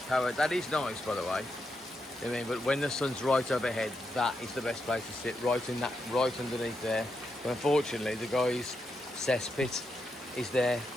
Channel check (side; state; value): both; normal; correlation 0.84